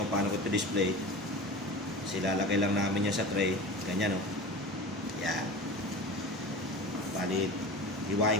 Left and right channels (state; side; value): normal; both; correlation 0.32